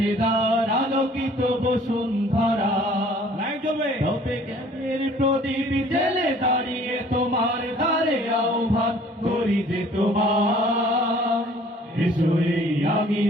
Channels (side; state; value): both; normal; correlation 0.54